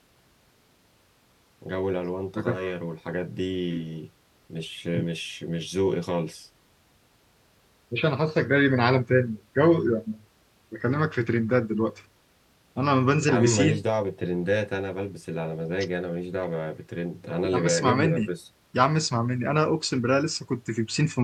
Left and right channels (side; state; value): both; identical; correlation 1.00